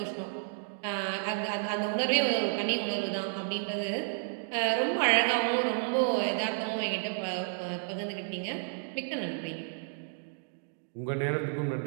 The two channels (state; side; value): silent; left; digital silence